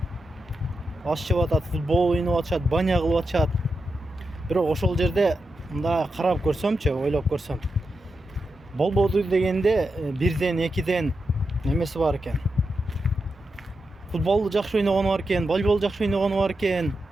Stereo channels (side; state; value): both; normal; correlation 0.88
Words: аш жеп атат, футбол ойноп атышат, баня кылып атышат. Бирок ошол жерде мындай карап көрсөмчү, ойлоп көрсөм, болбоду дегенде бирден, экиден немеси бар экен. Футболду жакшы ойногону бар экен, волейбол жакшы ойногону бар экен,